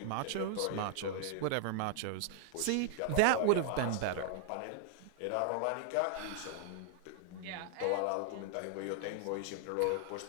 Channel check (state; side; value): different; both; correlation -0.01